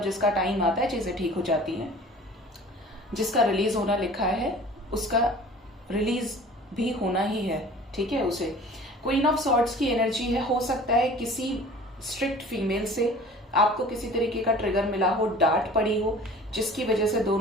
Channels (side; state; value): both; normal; correlation 0.44